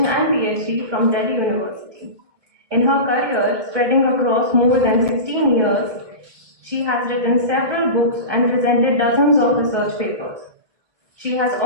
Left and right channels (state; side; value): late; left; 1.7 ms